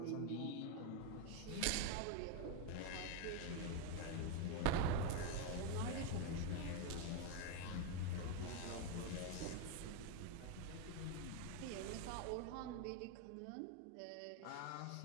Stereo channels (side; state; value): both; different; correlation 0.01